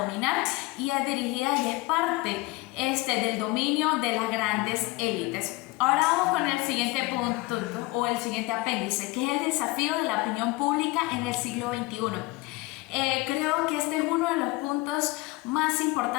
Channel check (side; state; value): right; quieter; 22.1 dB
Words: y es dirigida y es parte del dominio de las grandes élites. Ahora vamos con el siguiente punto o el siguiente apéndice, que es el desafío de la opinión pública en el siglo XXI. Creo que este es uno de los puntos más